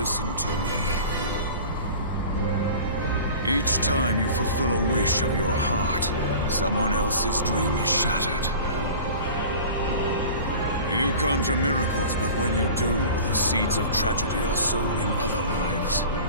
to me. Each time you fulfill a wish of your heart, someone else's dream is shattered. You conjure miracles, but when you do, the seeds of tragedy are sown in other lives.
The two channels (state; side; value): inverted; both; correlation -0.39